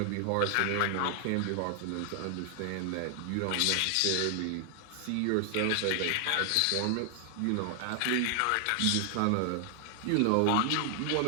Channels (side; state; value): both; different; correlation 0.00